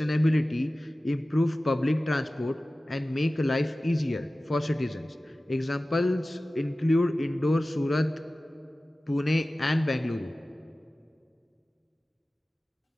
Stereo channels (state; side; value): normal; both; correlation 0.96